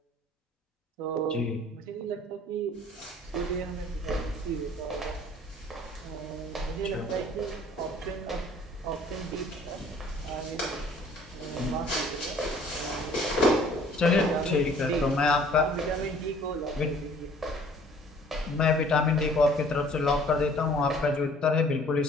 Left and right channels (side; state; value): both; normal; correlation 0.54